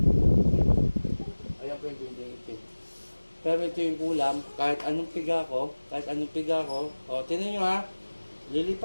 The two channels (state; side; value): inverted; both; correlation -1.00